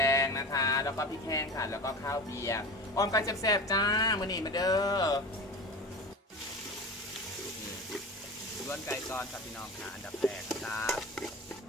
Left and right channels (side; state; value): both; normal; correlation 0.30